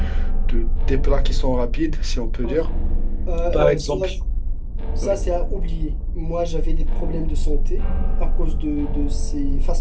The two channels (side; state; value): both; identical; correlation 1.00